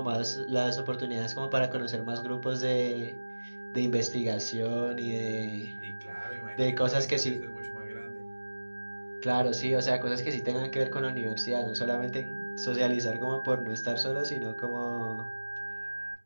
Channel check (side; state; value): both; inverted; correlation -1.00